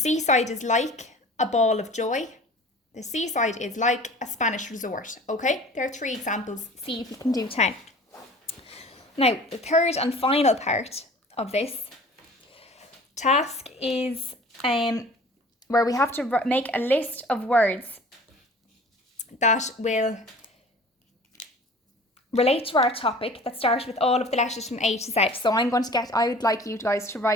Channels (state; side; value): normal; both; correlation 0.45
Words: is like a ball of joy. The seaside is like a Spanish resort. Okay, there are 3 examples. See if you can do 10. Now, the third and final part of this task is where we have to make a list of words that will relate to our topic that start with all of the letters from A to Z. So I would like you guys to